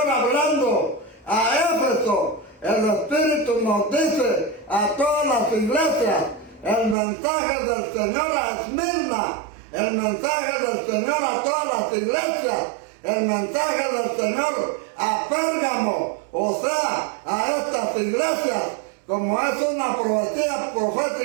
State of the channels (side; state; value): left; drops out; at 7.0 s